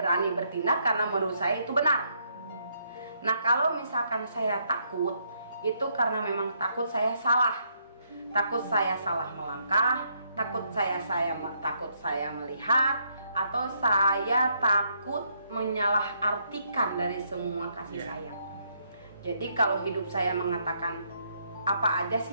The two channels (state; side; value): inverted; both; correlation -0.73